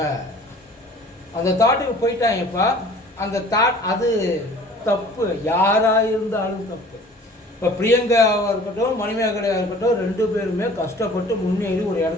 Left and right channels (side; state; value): both; normal; correlation 0.48